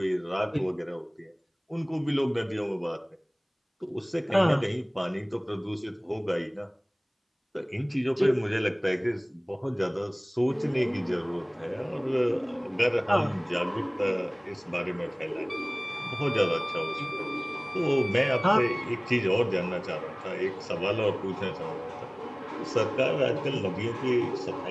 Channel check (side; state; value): both; identical; correlation 1.00